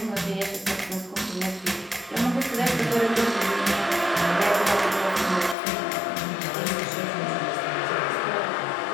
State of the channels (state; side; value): drops out; right; at 5.6 s